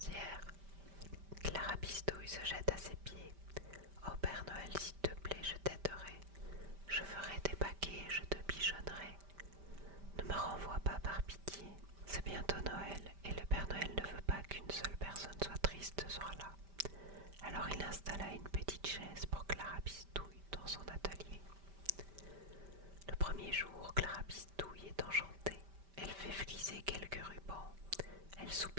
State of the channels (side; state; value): left; late; 5.1 ms